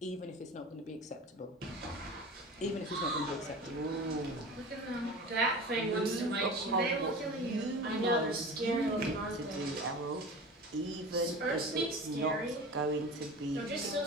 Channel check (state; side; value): normal; both; correlation 0.34